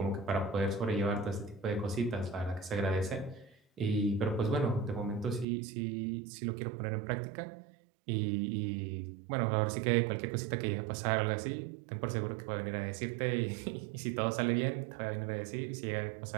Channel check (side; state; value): left; drops out; at 5.5 s